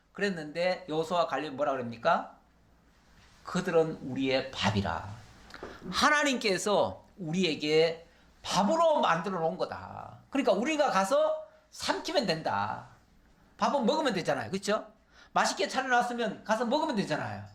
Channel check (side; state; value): both; identical; correlation 1.00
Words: 그랬는데 여호수아와 갈렙이 뭐라 그럽니까? 그들은 우리의 밥이라. 하나님께서 우리에게 밥으로 만들어 놓은 거다. 그러니까 우리가 가서 삼키면 된다. 밥은 먹으면 되잖아요. 그렇죠? 맛있게 차려놨으면 가서 먹으면 되잖아요.